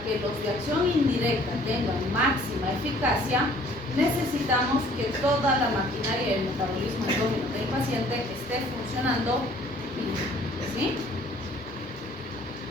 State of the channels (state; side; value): normal; both; correlation 0.56